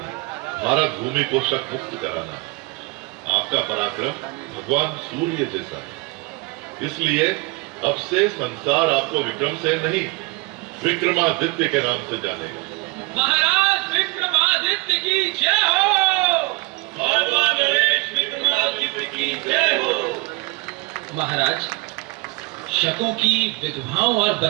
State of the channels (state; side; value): quieter; left; 25.5 dB